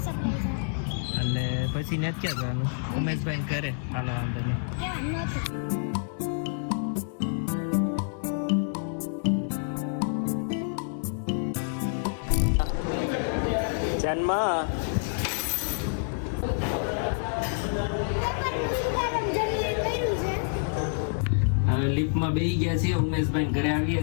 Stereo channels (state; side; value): silent; right; digital silence